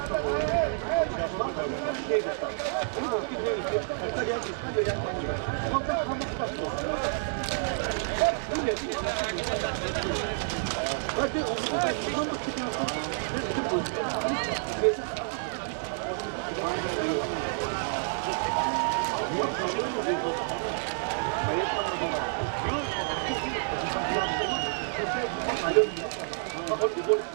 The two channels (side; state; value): left; silent; digital silence